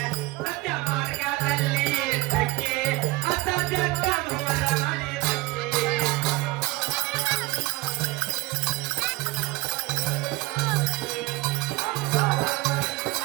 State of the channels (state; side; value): quieter; left; 21.6 dB